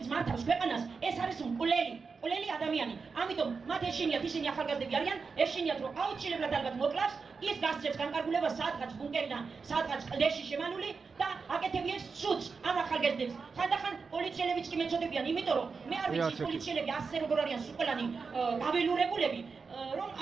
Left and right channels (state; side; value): quieter; left; 5.0 dB